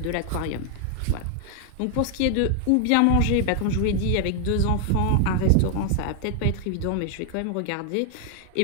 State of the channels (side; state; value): both; different; correlation 0.00